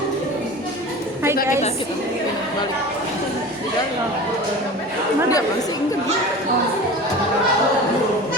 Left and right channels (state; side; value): normal; both; correlation 0.35